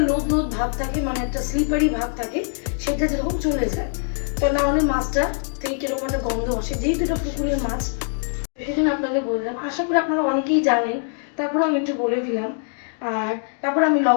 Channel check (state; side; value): silent; right; 57 dB below the other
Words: লোদ লোদ ভাব থাকে, মানে একটা স্লিপারি ভাব থাকে, সেটা যেরকম চলে যায়। তো না হলে মাছটা থেকে কিরকম একটা গন্ধ আসে, যেহেতু এটা পুকুরের মাছ, সেই জন্য আপনাদের বললাম। আশা করি আপনারা অনেকেই জানেন, তারপরে আমি একটু বলে দিলাম। আর তারপর আমি